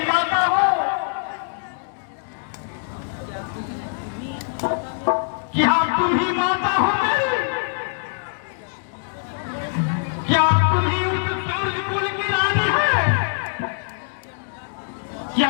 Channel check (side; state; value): right; silent; 63 dB below the other